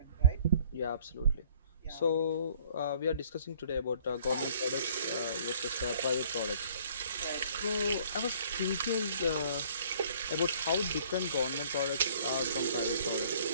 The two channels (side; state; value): both; inverted; correlation -0.56